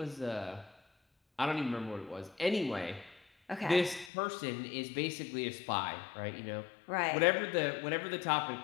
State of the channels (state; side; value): drops out; right; at 4.1 s